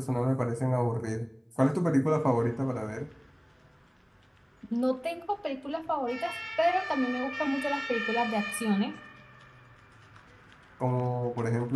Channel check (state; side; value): identical; both; correlation 1.00